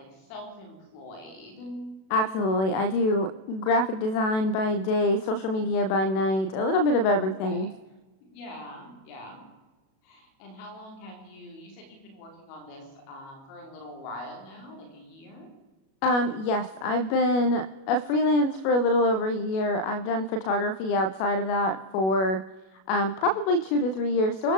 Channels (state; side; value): late; right; 37 ms